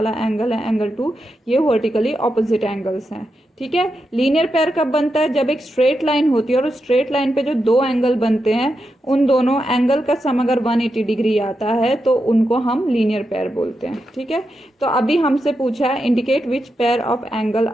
एंगल है एंगल 2, ये वर्टिकली ऑपोजिट एंगल्स हैं। ठीक है। लीनियर पेयर कब बनता है? जब एक स्ट्रेट लाइन होती है और उस स्ट्रेट लाइन पे जो दो एंगल बनते हैं, उन दोनों एंगल का सम अगर 180 डिग्री आता है तो उनको हम लीनियर पेयर बोलते हैं। ठीक है। तो अभी हमसे पूछा है indicate which pair of angle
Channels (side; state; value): both; normal; correlation 0.87